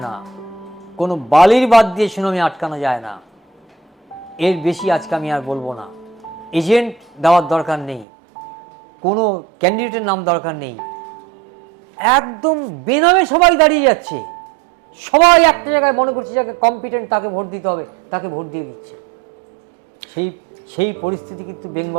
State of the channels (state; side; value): drops out; left; at 8.1 s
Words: না, কোনো বালির বাদ দিয়ে সুনামি আটকানো যায় না। এর বেশি আজকে আমি আর বলবো না। এজেন্ট দেওয়ার দরকার নেই, কোনো ক্যান্ডিডেটের নাম দরকার নেই, একদম বেনামে সবাই দাঁড়িয়ে যাচ্ছে। সবাই একটা জায়গায় মনে করছে যাকে কম্পিটেন্ট তাকে ভোট দিতে হবে, তাকে ভোট দিয়ে দিচ্ছে। সেই পরিস্থিতি কিন্তু